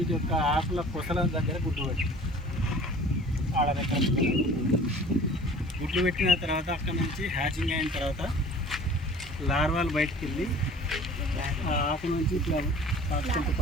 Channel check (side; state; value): both; normal; correlation 0.46